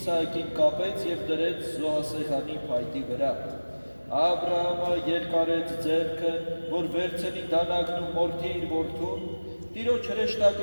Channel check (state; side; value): inverted; both; correlation -1.00